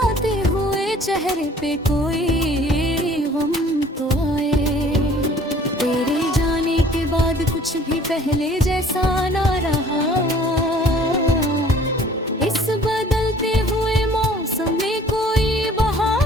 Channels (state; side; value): normal; both; correlation 0.53